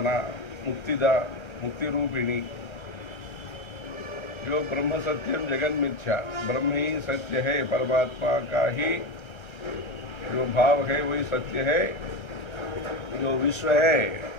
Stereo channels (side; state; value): right; late; 1.3 ms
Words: मुक्तिदा, मुक्ति रूपिणी। जो ब्रह्म सत्यम जगन मिथ्या, ब्रह्म ही सत्य है, परमात्मा का ही जो भाव है वही सत्य है। जो विश्व है